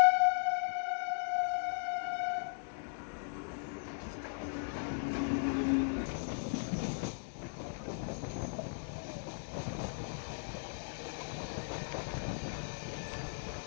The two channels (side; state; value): right; silent; 53 dB below the other